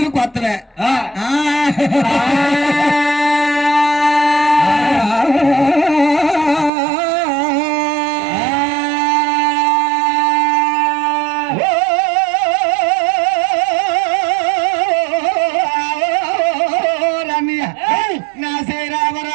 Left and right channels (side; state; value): left; drops out; at 6.7 s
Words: కొత్తవే నా శ్రీ రామ